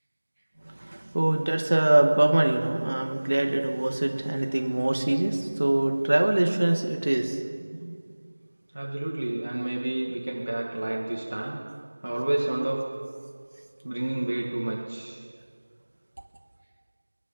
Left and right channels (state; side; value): inverted; both; correlation -1.00